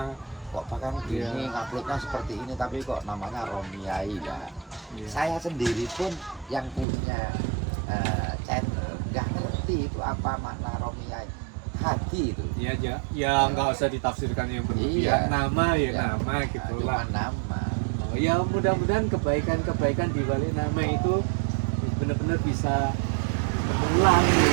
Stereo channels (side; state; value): left; drops out; at 6.9 s